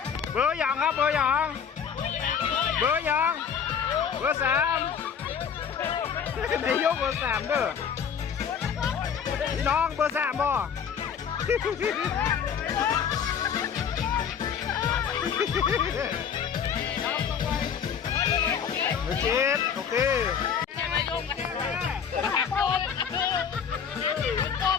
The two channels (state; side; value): quieter; right; 7.4 dB